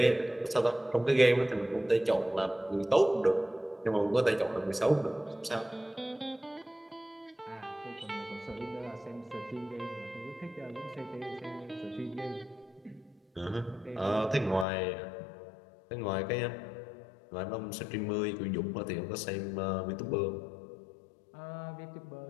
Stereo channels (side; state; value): right; drops out; at 14.7 s